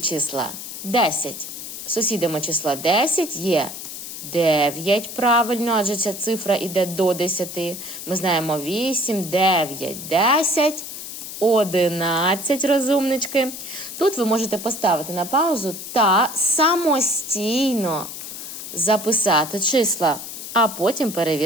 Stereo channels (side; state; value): left; noise; hiss, 9 dB below the sound